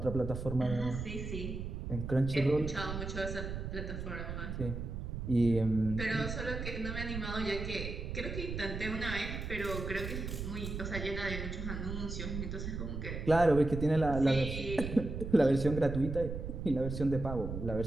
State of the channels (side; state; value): right; noise; rumble, 5 dB below the sound